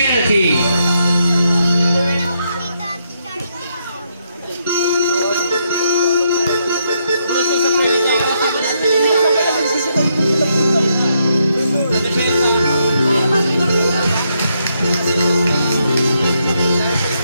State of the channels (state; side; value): inverted; both; correlation -0.78